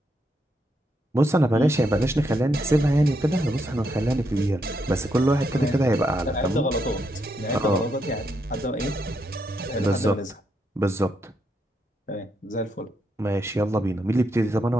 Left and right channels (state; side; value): normal; both; correlation 0.79